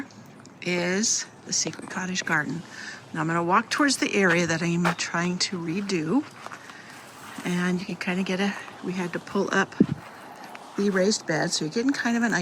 is the secret cottage garden. Now I'm going to walk towards the area that I'm trying to redo. And you can kind of we had to pull up the raised bed, so you're getting kind of an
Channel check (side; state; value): both; identical; correlation 1.00